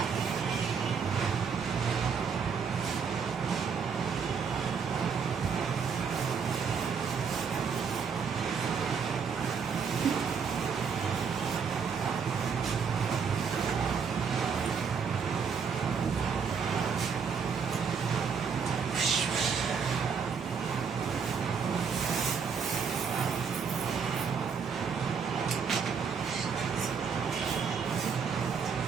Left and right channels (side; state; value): left; quieter; 6.1 dB